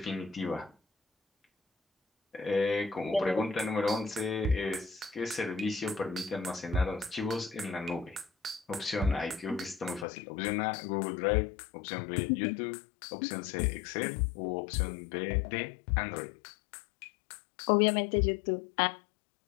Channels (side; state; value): right; drops out; at 10.1 s